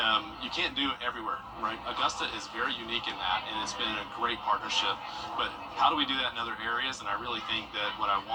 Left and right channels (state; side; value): identical; both; correlation 1.00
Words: you can't do it everywhere, right? Augusta is very unique in that, and it's been a great partnership. But how do we do that in other areas? And I really think that what I